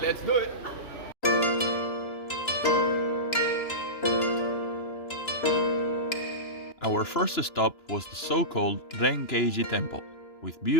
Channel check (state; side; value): late; right; 2.9 ms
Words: let's do it. Our first stop was the so-called Renkeiji temple, with